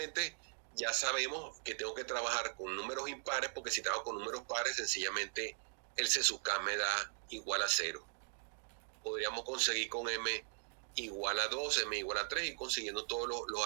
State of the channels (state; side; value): silent; left; digital silence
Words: Ya sabemos que tengo que trabajar con números impares, porque si trabajo con números pares, sencillamente el C sub K me da igual a 0. Podríamos conseguir con M igual a 2, M igual a 3 y consiguiendo todos los